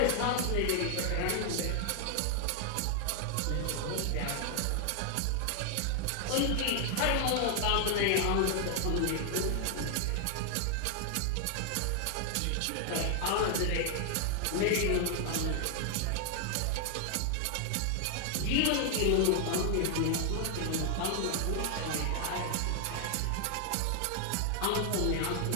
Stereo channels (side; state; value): both; different; correlation 0.00